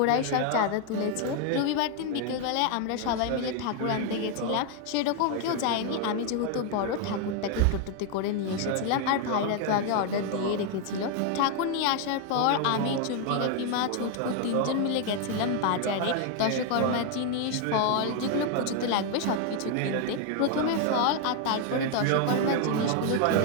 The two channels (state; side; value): different; both; correlation 0.00